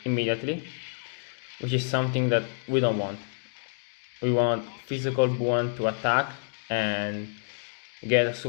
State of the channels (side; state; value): right; silent; digital silence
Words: immediately, which is something that we don't want. We want physical Buon to attack and get a